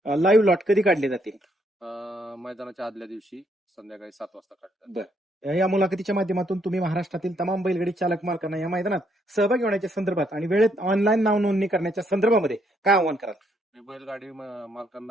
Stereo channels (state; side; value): normal; both; correlation 0.72